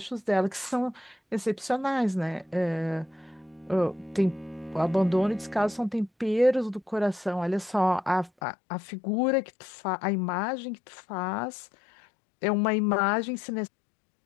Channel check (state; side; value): drops out; right; at 8.3 s